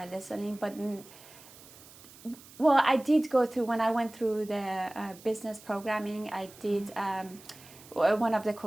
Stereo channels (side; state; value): right; noise; hiss, 21 dB below the sound